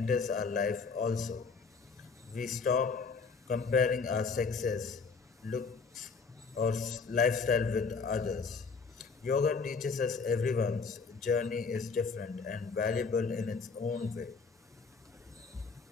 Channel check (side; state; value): right; quieter; 5.0 dB